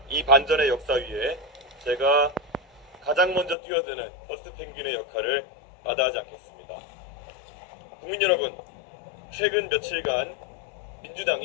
이 반전의 역사 위에 제가 가장 먼저 뛰어드는 퍼스트 펭귄의 역할을 마다하지 않겠습니다. 국민 여러분, 최근 며칠간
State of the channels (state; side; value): drops out; right; at 3.6 s